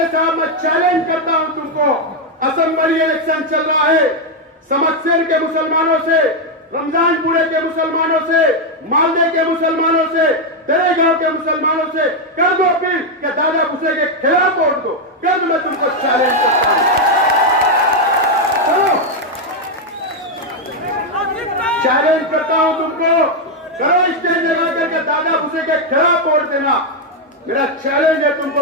साहब मैं चैलेंज करता हूं तुमको, असेंबली इलेक्शन चल रहा है, समस्या के मुसलमानों से, रमजानपुरे के मुसलमानों से, मालदे के मुसलमानों से, दरेगांव के मुसलमानों से कर दो अपील कि दादा भूसे के खिलाफ वोट दो। कल मैं तुमको चैलेंज करता हूं, चैलेंज करता हूं तुमको, करो स्टेज लगा करके दादा भूसे के खिलाफ वोट देना। मेरा चैलेंज है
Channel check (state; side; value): normal; both; correlation 0.02